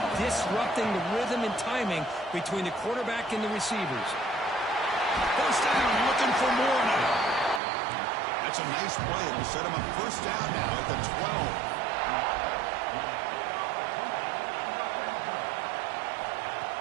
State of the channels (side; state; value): left; drops out; at 7.6 s